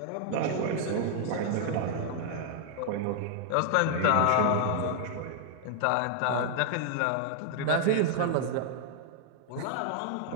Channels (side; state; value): both; different; correlation -0.01